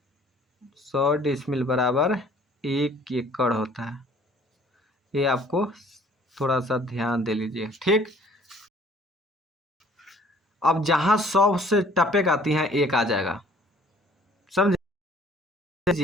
100 डिसमिल बराबर 1 एकड़ होता है। ये आपको थोड़ा सा ध्यान दे लीजिए, ठीक। अब जहां 100 से टपेक आती हैं 1 आ जाएगा, समझ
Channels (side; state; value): both; normal; correlation 0.55